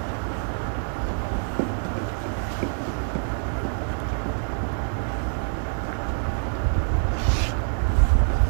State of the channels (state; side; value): silent; left; 61 dB below the other